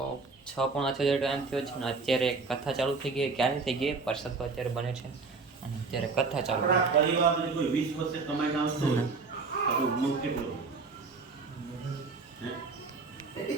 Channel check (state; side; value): quieter; left; 4.2 dB